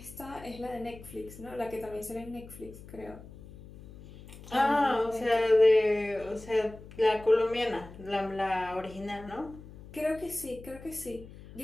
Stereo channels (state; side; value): noise; left; hum, 17 dB below the sound